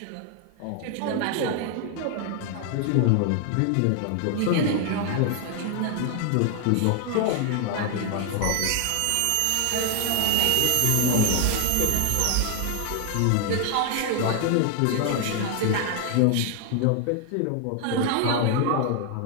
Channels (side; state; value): both; different; correlation 0.00